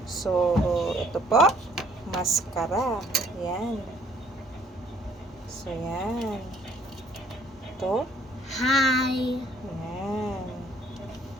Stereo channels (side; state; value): both; normal; correlation 0.62